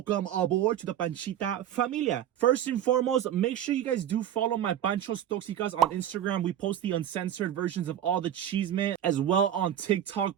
aboard to the Panchita familia. First and foremost, make sure you guys do follow my Pancho's Toxicas on Instagram. We post the uncensored versions of all the cheesemen, as well on TikTok.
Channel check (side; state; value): left; quieter; 10.7 dB